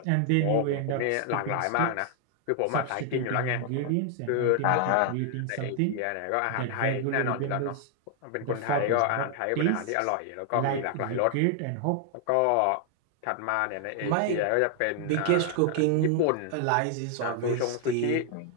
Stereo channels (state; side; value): different; both; correlation 0.00